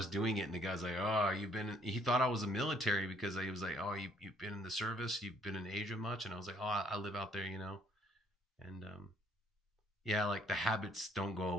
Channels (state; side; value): normal; both; correlation 0.64